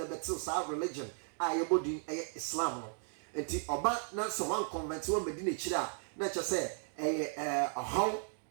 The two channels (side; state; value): left; silent; 54 dB below the other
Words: bɛte saa religion a yɛbɔ din ɛyɛ Islam no nti ɔba na sɛ wan convert wɔn bɛdi n'akyiri a na kyerɛ sɛ ɛyɛ ɔhaw